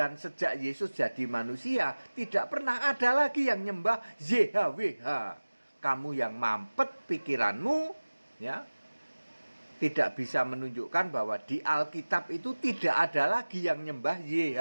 sejak Yesus jadi manusia, tidak pernah ada lagi yang nyembah YHWH. Kamu yang mampet pikiranmu, ya, tidak bisa menunjukkan bahwa di Alkitab itu tidak ada lagi yang nyembah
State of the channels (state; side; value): inverted; both; correlation -1.00